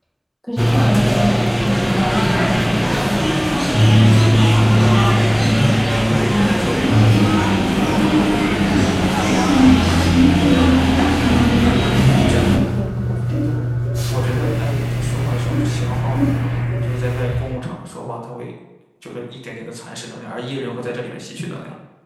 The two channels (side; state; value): both; identical; correlation 1.00